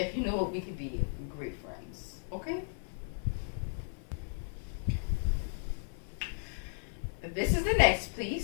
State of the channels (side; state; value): right; silent; 55 dB below the other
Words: you know it, we could be great friends, okay? This is the next